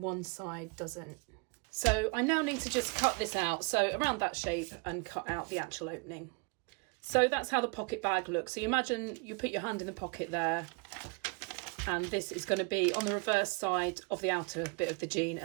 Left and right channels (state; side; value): quieter; left; 31.1 dB